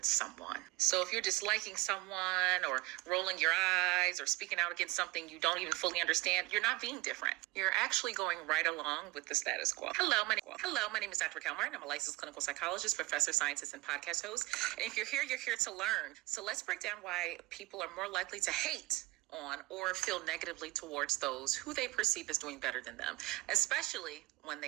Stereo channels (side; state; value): left; quieter; 21.8 dB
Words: someone? So if you're disliking someone or rolling your eyes or speaking out against something you don't even fully understand, you're not being different. You're actually going right along with the status quo. Hello, my name is Dr. Kelmer, and I'm a licensed clinical psychologist, professor, scientist, and podcast host. And if you're here to learn. So let's break down why people are more likely to hate on or feel negatively towards those who they perceive as doing better than them, especially when